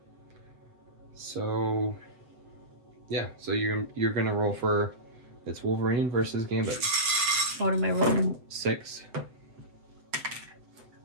So, yeah. So you're gonna roll for. It's Wolverine versus Gambit. What am I rolling? 6.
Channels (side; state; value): left; late; 7.8 ms